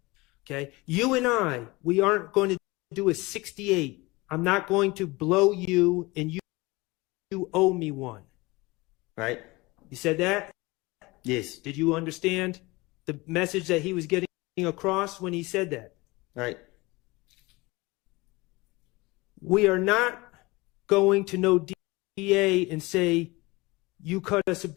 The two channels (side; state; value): right; quieter; 22.9 dB